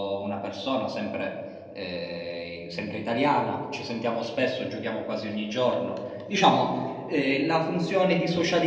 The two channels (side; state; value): both; identical; correlation 1.00